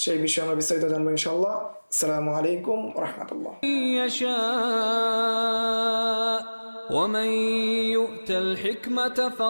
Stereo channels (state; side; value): inverted; both; correlation -1.00